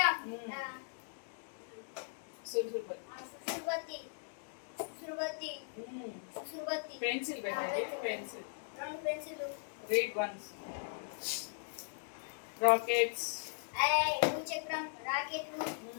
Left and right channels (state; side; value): silent; right; digital silence